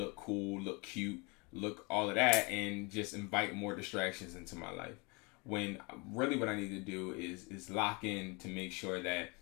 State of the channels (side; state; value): right; quieter; 29.3 dB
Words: cool, look cute, look all of that, and just invite more distractions into my life. When really what I need to do is lock in to make sure that